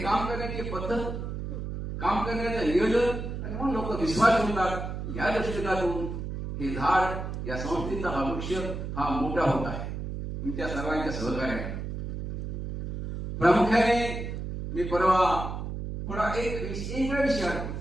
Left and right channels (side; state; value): right; noise; hum, 5 dB below the sound